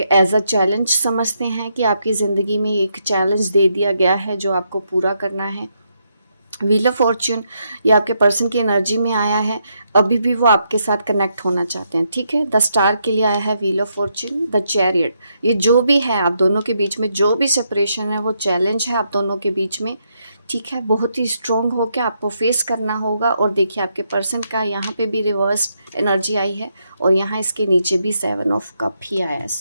अ चैलेंज समझते हैं कि आपकी ज़िंदगी में एक चैलेंज दे दिया गया है जो आपको पूरा करना है। व्हील ऑफ फॉर्च्यून ये आपके पर्सन की एनर्जी में आया है, अभी भी वो आपके साथ कनेक्ट होना चाहते हैं, ठीक है। द स्टार के लिए आया है wheel of Fortune, the chariot. ये जो भी है आप दोनों के बीच में, जो भी सेपरेशन है वो चैलेंज है आप दोनों के बीच में, ठीक है। बहुत ही स्ट्रॉन्ग होकर आपको फेस करना होगा। और देखिए आपके पर्सन का यहाँ पे भी रिवर्स एनर्जी आई है और यहाँ इसके नीचे भी 7 ऑफ कप ही आया है।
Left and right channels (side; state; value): both; inverted; correlation -0.78